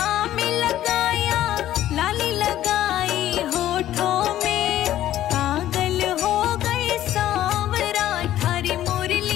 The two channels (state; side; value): quieter; right; 12.9 dB